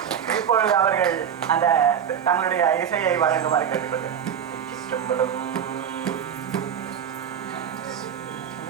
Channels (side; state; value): left; quieter; 8.3 dB